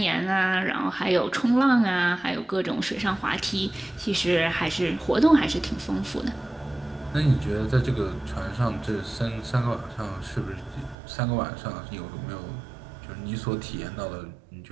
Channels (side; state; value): left; drops out; at 11.0 s